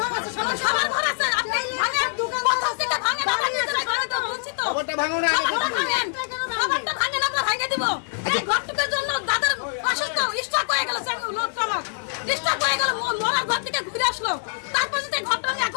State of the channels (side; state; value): right; silent; 62 dB below the other